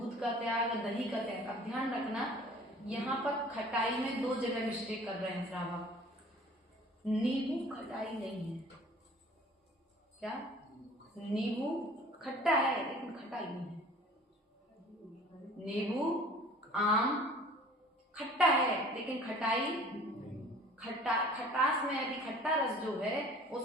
का त्याग, दही का त्याग। अब ध्यान रखना, यहाँ पर खटाई में 2 जगह मिस्टेक कर रहे हैं श्रावक। नींबू खटाई नहीं है। क्या? नींबू खट्टा है लेकिन खटाई नहीं है। नींबू, आम खट्टा है लेकिन खटास में यदि खट्टा रस जो है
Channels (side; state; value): both; normal; correlation 0.48